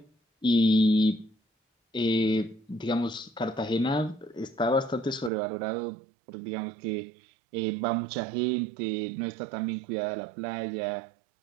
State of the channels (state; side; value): drops out; left; at 5.3 s